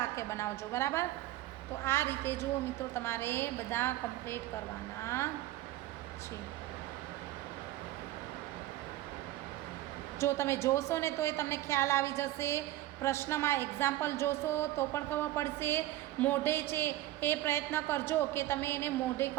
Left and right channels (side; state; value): left; quieter; 15.4 dB